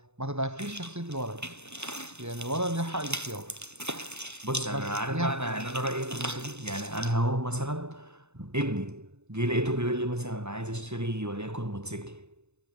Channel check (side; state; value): left; late; 0.81 ms